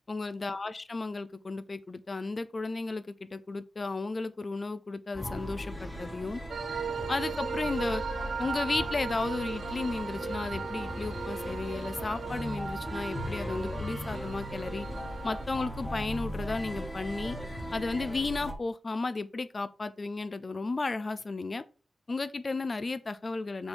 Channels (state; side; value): normal; both; correlation 0.92